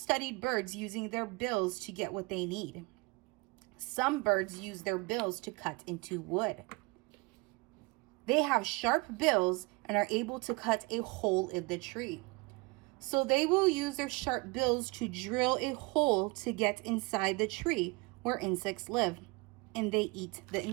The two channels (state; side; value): quieter; left; 26.1 dB